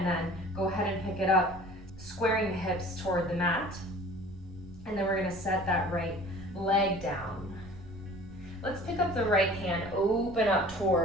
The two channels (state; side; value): noise; right; rumble, 18 dB below the sound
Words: then go ahead and pick it up, squaring the hips toward the mat. And then we're gonna set that right leg down. Let's pick up the right hand, open up